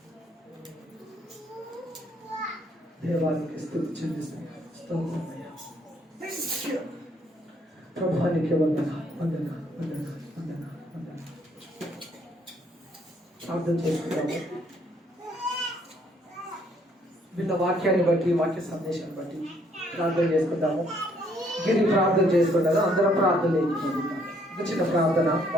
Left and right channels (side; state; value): both; normal; correlation 0.67